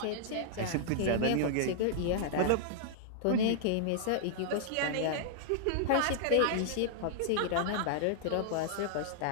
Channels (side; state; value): both; different; correlation -0.01